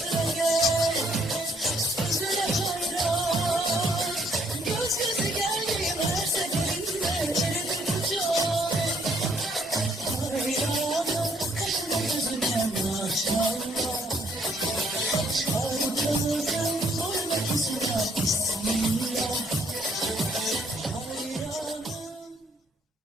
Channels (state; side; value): normal; both; correlation 0.67